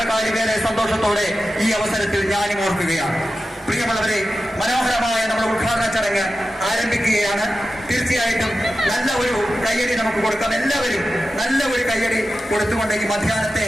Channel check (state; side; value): normal; both; correlation 0.92